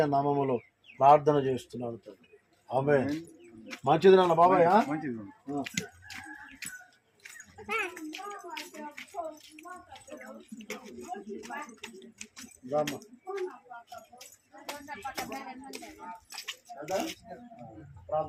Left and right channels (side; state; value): both; identical; correlation 1.00